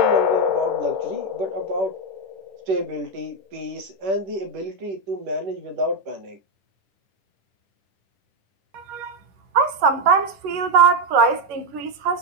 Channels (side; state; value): left; late; 11 ms